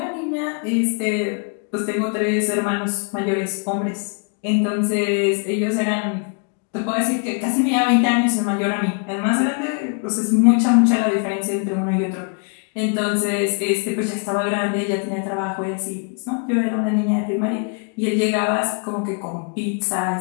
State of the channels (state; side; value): quieter; right; 39.2 dB